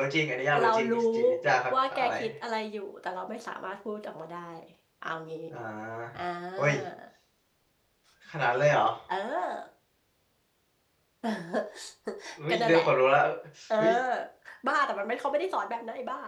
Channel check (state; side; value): identical; both; correlation 1.00